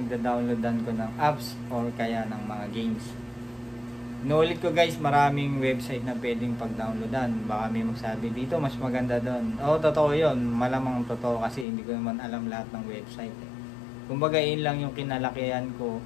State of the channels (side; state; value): right; drops out; at 11.7 s